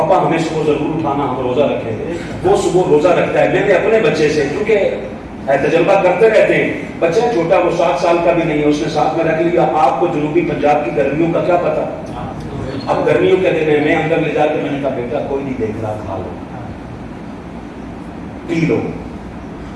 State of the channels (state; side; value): identical; both; correlation 1.00